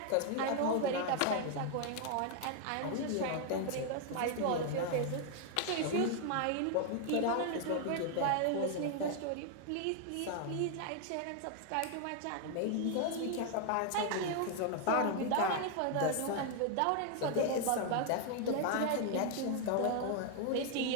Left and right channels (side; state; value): both; different; correlation 0.00